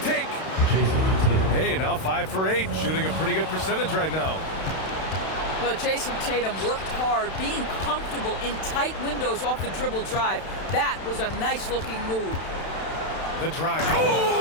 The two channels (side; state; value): right; late; 31 ms